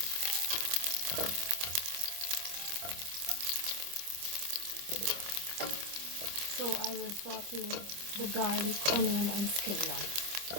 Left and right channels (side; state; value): left; late; 25 ms